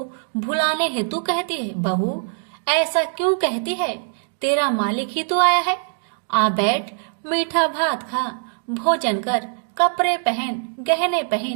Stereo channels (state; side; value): silent; left; digital silence